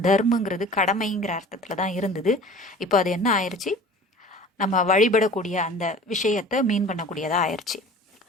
தர்மங்கிறது கடமைங்கிற அர்த்தத்துல தான் இருந்தது. இப்போ அது என்ன ஆயிடுச்சு, நம்ம வழிபடக்கூடிய அந்த விஷயத்தை மீன் பண்ணக்கூடியதா ஆயிடுச்சு.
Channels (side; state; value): both; normal; correlation 0.43